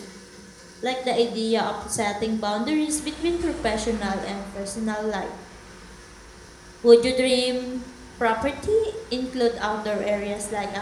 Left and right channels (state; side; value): identical; both; correlation 1.00